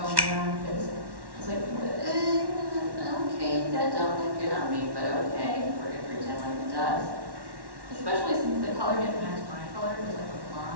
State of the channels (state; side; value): late; left; 1.1 ms